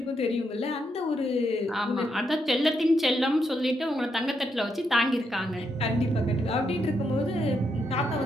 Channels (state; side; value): normal; both; correlation 0.80